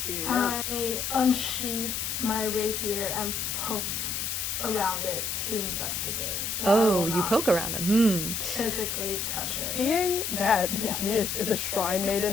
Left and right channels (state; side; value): noise; left; hiss, 2 dB below the sound